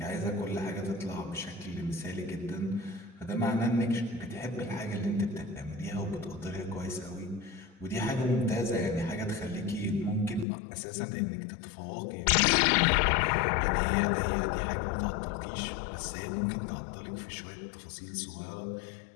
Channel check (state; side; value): drops out; right; at 10.5 s